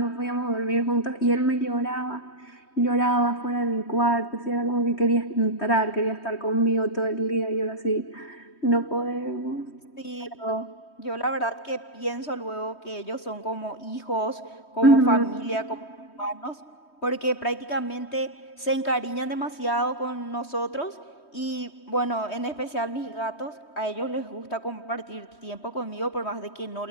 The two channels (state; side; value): late; right; 3.2 ms